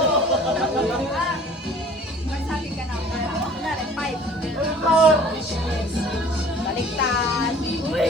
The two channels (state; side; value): normal; both; correlation 0.49